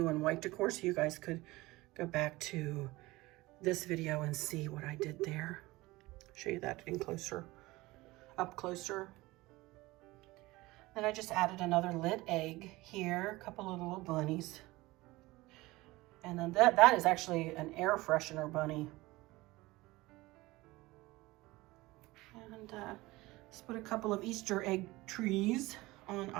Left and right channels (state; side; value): quieter; left; 20.3 dB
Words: and white decor, so you guys could go back to this video and see what I did there. Show you that in closer, up closer. Then I just added another lit egg here, a couple of little bunnies. And then that is actually an air freshener bunny. And let's put a couple of Easter egg trees on